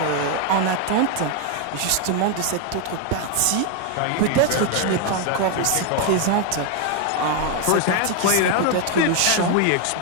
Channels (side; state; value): both; different; correlation 0.01